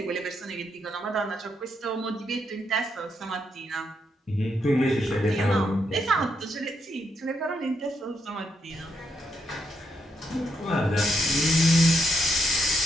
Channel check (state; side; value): normal; both; correlation 0.78